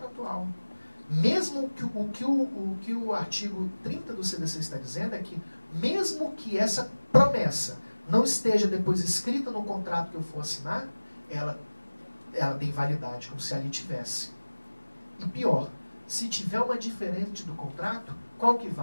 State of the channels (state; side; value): inverted; both; correlation -1.00